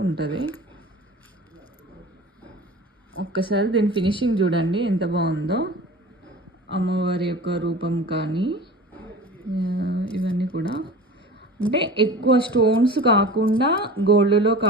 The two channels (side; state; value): both; normal; correlation 0.37